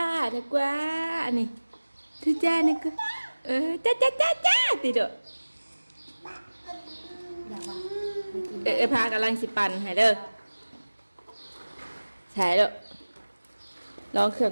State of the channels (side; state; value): both; inverted; correlation -1.00